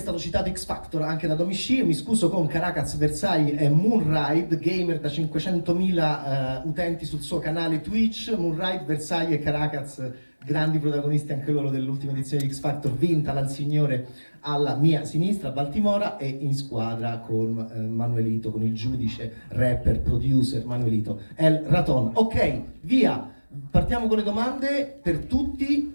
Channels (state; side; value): inverted; both; correlation -1.00